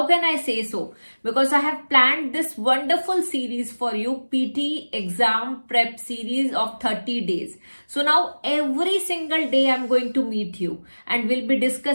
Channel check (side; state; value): both; inverted; correlation -1.00